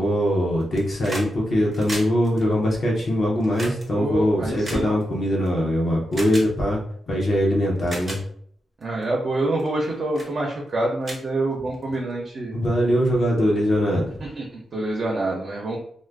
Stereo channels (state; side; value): normal; both; correlation 0.86